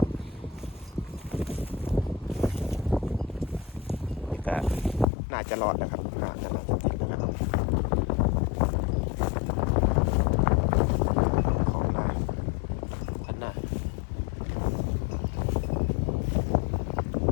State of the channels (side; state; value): right; drops out; at 5.1 s